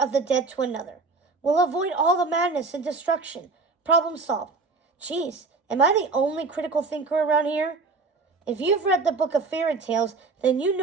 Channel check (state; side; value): quieter; left; 4.1 dB